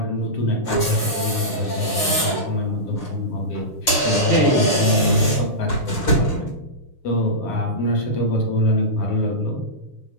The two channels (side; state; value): right; late; 6.7 ms